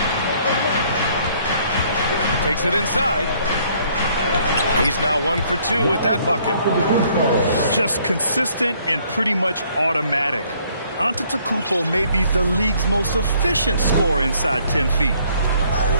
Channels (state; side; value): inverted; both; correlation -0.63